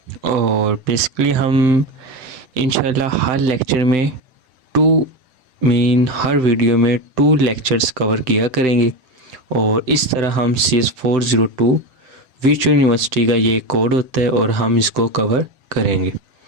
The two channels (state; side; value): late; left; 7.8 ms